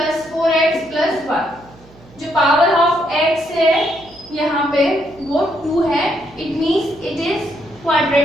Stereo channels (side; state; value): right; noise; hum, 25 dB below the sound